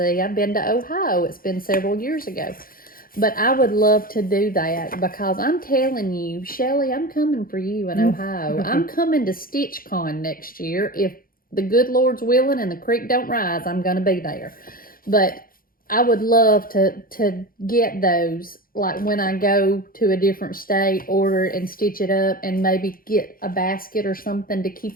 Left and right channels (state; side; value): late; right; 0.42 ms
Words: I've been to Ohio. It's been several years ago. But I would love to do that because I'm telling you, Shelli, I'm coming for you in Ohio. I'm coming to StitchCon next year. If the good Lord's willing and the creek don't rise, I'm going to be there. But I would love to get those, like when I go to a different state, order it and stitch it up and maybe get a basket or something to